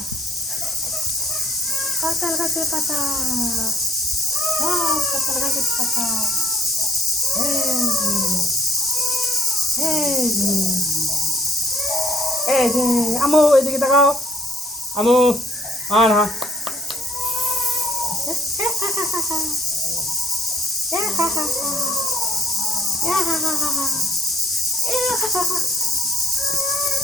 কাঁঠাল গাছের পাতা, সব কাঁঠাল গাছের পাতা। এই যে আমু এদিকে তাকাও, আমু আর হ্যাঁ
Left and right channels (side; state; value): both; normal; correlation 0.66